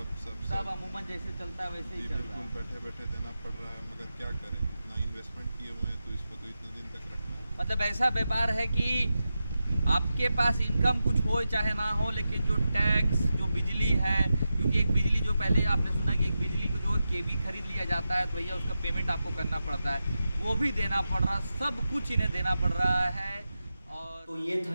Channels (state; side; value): inverted; both; correlation -0.91